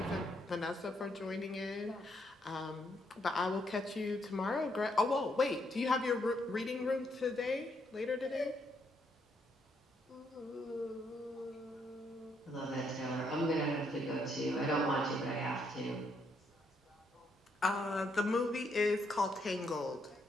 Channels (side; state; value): both; normal; correlation 0.75